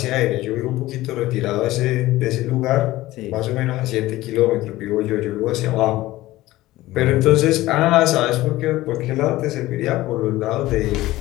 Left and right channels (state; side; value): quieter; right; 17.1 dB